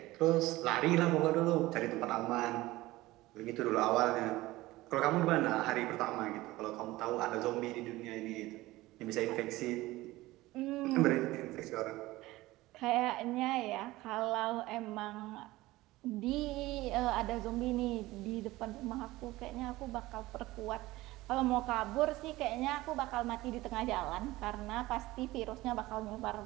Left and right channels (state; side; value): quieter; left; 18.4 dB